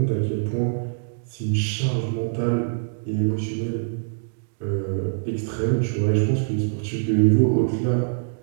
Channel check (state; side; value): silent; left; digital silence